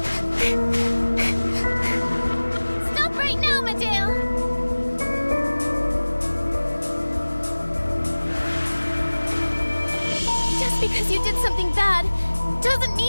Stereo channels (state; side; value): inverted; both; correlation -1.00